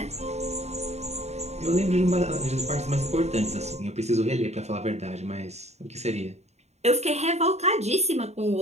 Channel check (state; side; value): late; left; 0.32 ms